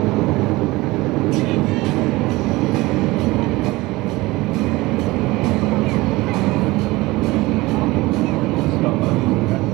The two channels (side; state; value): left; quieter; 20.6 dB